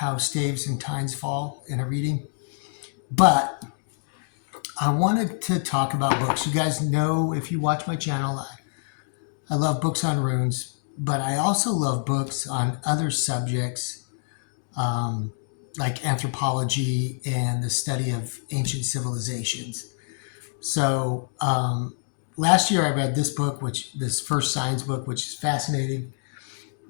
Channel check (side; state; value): right; silent; digital silence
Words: Staves and Tines Fall in a reading. But I wanted to talk about books. You guys know, if you watch my channel, I love books on runes, but I also love books on other subjects like anthropology and the study of ancient civilizations. So last year I read this book, this first science book, which is fascinating.